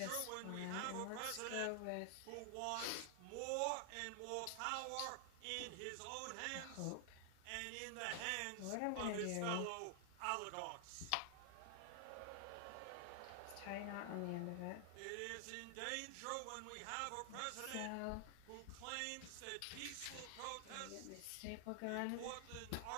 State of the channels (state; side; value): different; both; correlation 0.00